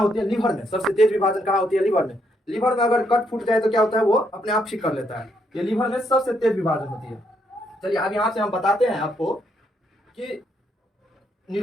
है? लीवर में। सबसे तेज विभाजन कहाँ होती है? लीवर में। लीवर में अगर कट फूट जाए तो क्या होता है? वो अपने आप ठीक कर लेता है। ये लीवर में सबसे तेज विभाजन होती है। चलिए अब यहाँ से हम बताते हैं आपको कि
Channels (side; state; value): both; normal; correlation 0.75